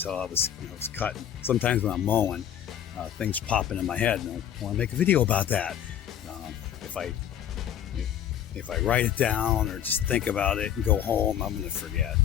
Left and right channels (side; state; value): right; quieter; 10.1 dB